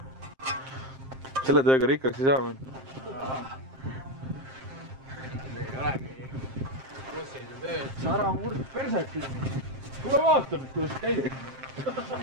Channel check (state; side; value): late; left; 7.6 ms